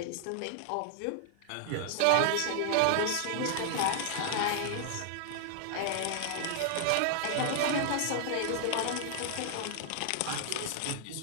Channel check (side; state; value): both; different; correlation 0.00